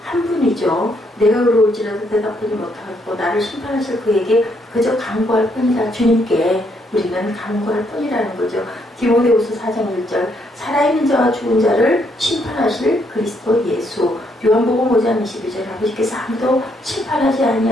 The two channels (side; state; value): both; normal; correlation 0.73